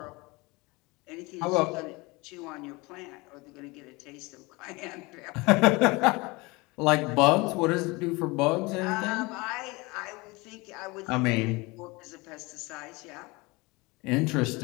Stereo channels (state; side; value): quieter; right; 24.6 dB